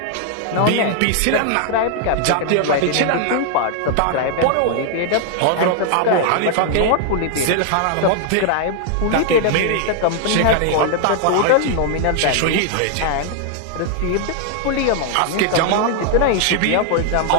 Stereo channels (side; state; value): both; different; correlation 0.00